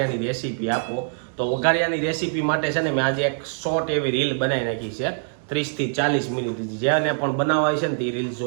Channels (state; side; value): silent; left; digital silence